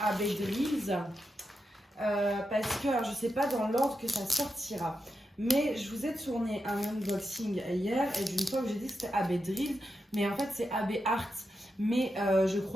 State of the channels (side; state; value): both; normal; correlation 0.87